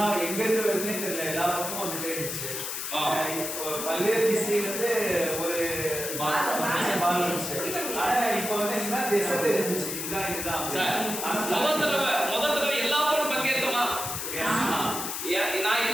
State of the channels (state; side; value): noise; left; hiss, 4 dB below the sound